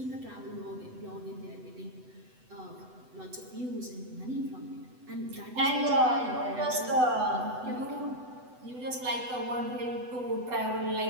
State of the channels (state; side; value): late; left; 8.0 ms